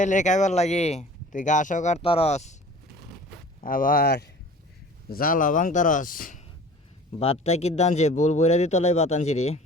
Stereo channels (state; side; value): normal; both; correlation 0.44